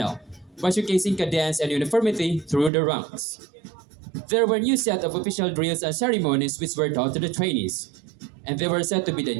by showcasing cadence and uniformity through the ranks. There were new set of official drills and ceremonies which were taught to the trainees, and they were said to be the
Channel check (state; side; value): drops out; left; at 2.7 s